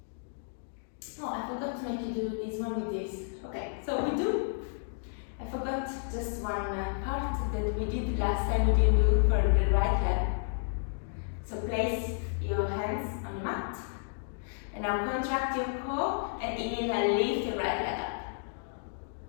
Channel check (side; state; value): right; silent; digital silence